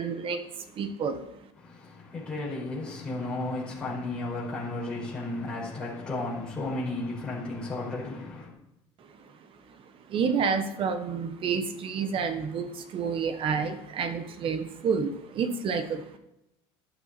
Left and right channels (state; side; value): quieter; left; 3.3 dB